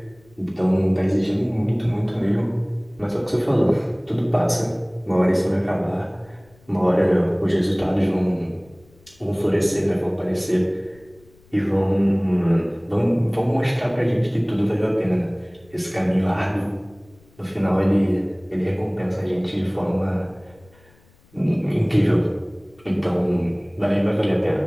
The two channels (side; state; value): left; noise; rumble, 29 dB below the sound